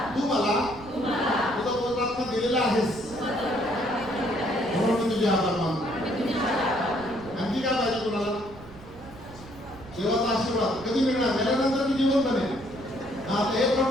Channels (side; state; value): right; noise; rumble, 18 dB below the sound